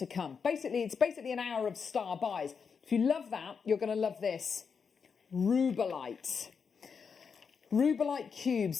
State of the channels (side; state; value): right; quieter; 6.0 dB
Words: come. It's basically an hour of star buys. If you love that, you're going to love this. Rubellite. Rubellite cubes.